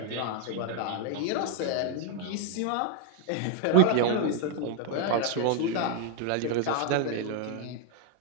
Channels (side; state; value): both; different; correlation 0.00